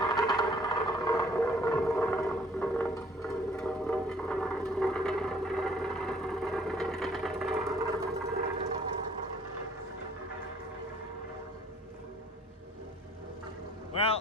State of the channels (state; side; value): normal; both; correlation 0.58